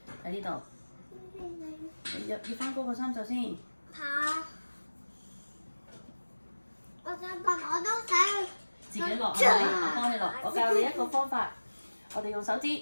喺呢度，你要翻高個衫袖先。嚇！我想問，我都想自己落係咪？我幫你落。我教你一個方法，我哋用手指，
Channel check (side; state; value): both; inverted; correlation -1.00